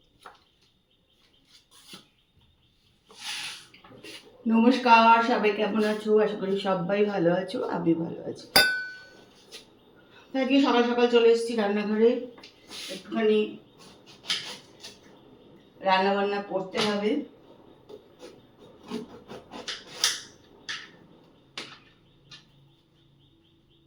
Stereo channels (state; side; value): identical; both; correlation 1.00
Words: সবাই কেমন আছো? আশা করি সবাই ভালো আছো, আমি ভালো আছি। আজকে সকাল সকাল চলে এসেছি রান্নাঘরে, একটুখানি রান্না বান্না করতে হবে।